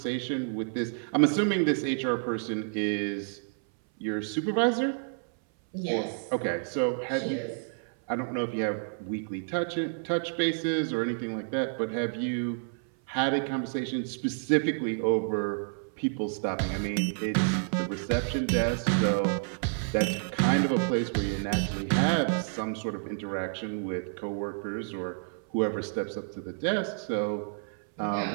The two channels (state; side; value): silent; left; 58 dB below the other